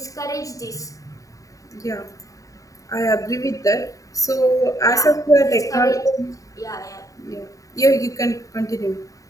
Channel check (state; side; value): late; right; 0.16 ms